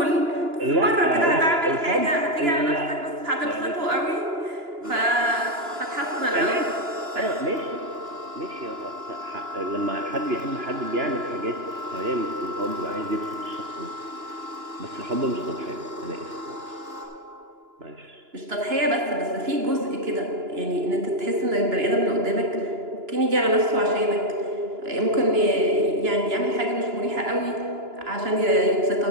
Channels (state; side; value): late; left; 2.9 ms